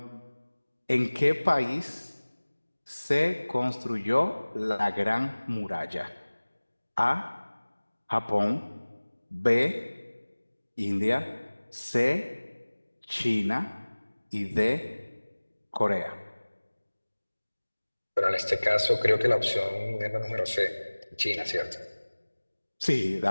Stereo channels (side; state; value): both; inverted; correlation -1.00